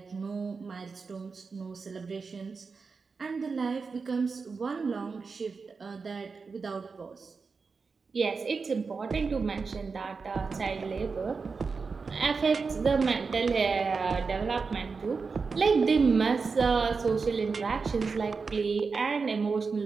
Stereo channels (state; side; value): quieter; left; 4.8 dB